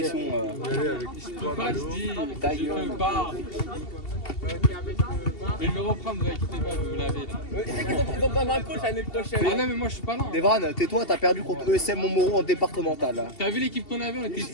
Je peux pas, je dis. Je peux pas. Je vais le reprendre, vous inquiétez pas, vous l'avez là. Tu sais qu'ils ont besoin d'un coach l'année prochaine. Ah non, mais moi je suis pas là. Devran, tais-toi, t'as perdu contre ESM Montmoreau en départemental. T'as vu l'équipe qu'on avait, on était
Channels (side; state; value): right; late; 2.7 ms